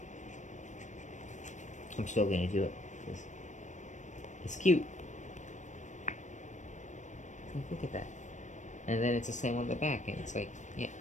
still going to do it. It's cute. Look at that. And then it's the same on the back, and it's like, yeah.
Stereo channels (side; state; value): right; late; 0.35 ms